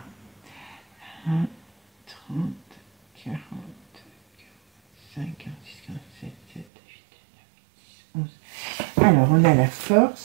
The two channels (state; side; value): drops out; left; at 6.7 s